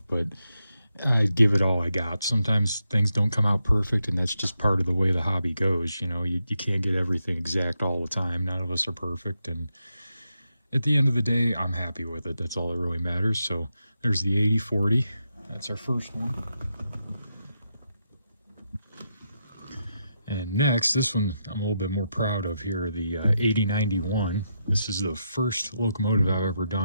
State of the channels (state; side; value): inverted; both; correlation -0.83